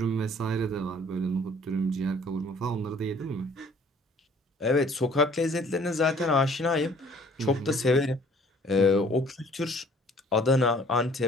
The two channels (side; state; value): both; normal; correlation 0.55